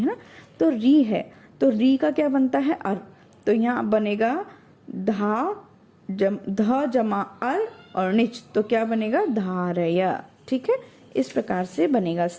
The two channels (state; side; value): identical; both; correlation 1.00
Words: ना। तो री है तो री का क्या बनता है अर, तो यहाँ बनेगा ध जमा अर और निच, तो क्या बनेगा धारया, ठीक है। इस प्रकार से बनेगा।